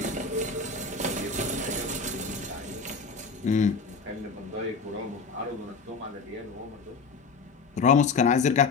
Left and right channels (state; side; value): quieter; right; 4.6 dB